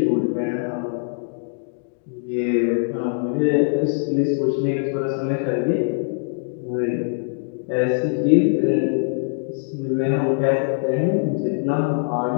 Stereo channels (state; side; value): silent; right; digital silence